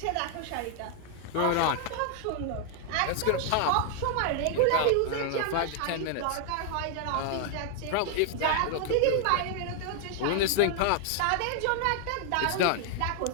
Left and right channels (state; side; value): different; both; correlation 0.00